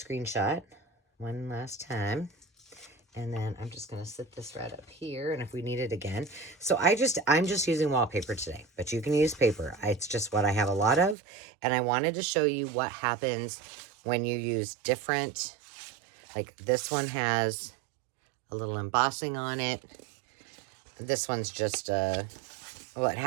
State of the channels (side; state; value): left; drops out; at 11.2 s